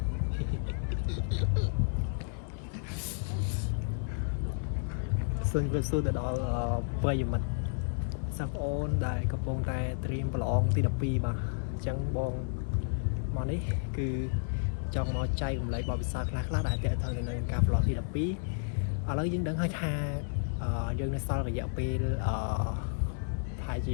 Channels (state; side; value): silent; right; digital silence